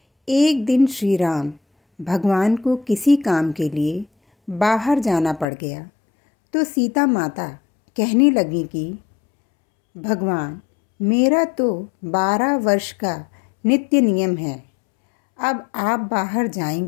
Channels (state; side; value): drops out; right; at 5.5 s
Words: एक दिन श्री राम भगवान को किसी काम के लिए बाहर जाना पड़ गया तो सीता माता कहने लगी कि भगवान, मेरा तो 12 वर्ष का नित्य नियम है। अब आप बाहर